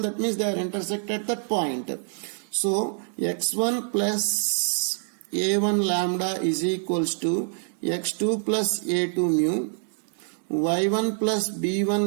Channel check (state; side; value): silent; left; digital silence